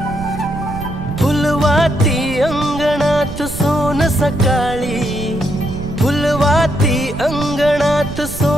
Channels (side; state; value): right; noise; rumble, 10 dB below the sound